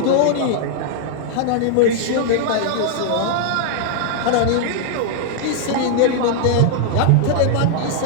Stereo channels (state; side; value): different; both; correlation 0.00